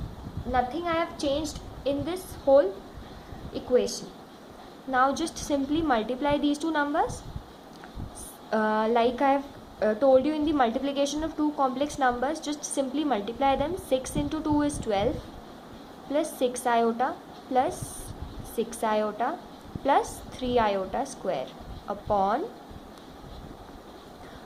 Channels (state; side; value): identical; both; correlation 1.00